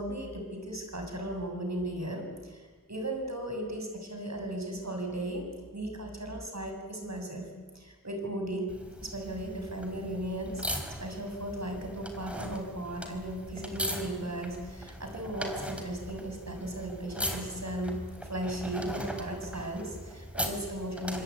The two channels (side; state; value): both; normal; correlation 0.28